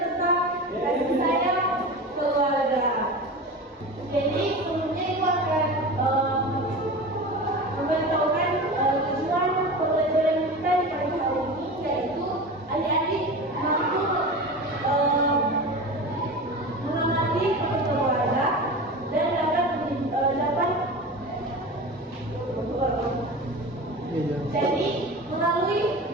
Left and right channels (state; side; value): normal; both; correlation 0.30